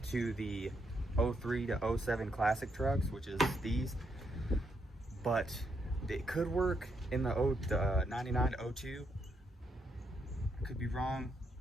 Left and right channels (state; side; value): normal; both; correlation 0.77